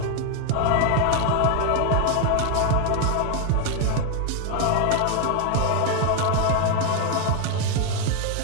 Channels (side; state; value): both; different; correlation 0.01